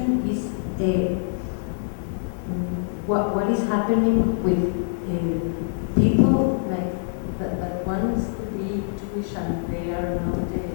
is what is happening with people like that wants to be Jewish and they are not.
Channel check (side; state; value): right; silent; digital silence